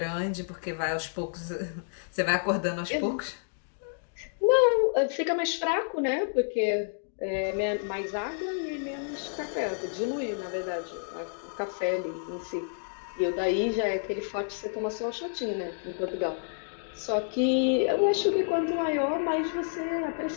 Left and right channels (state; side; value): silent; right; digital silence